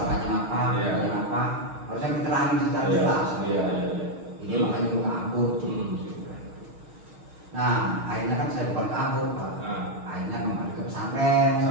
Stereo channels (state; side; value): late; left; 6.4 ms